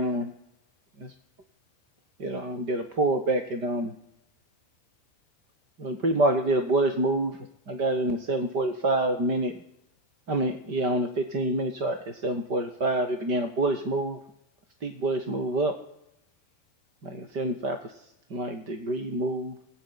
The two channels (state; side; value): late; left; 5.1 ms